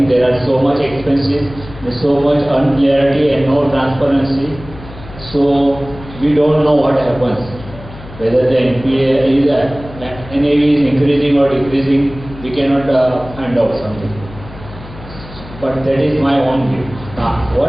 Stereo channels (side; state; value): left; noise; hum, 16 dB below the sound